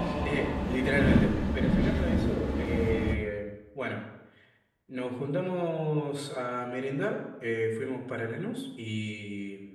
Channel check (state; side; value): identical; both; correlation 1.00